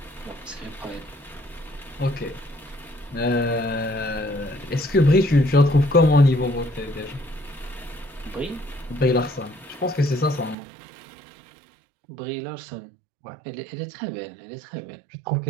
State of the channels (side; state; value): left; drops out; at 10.6 s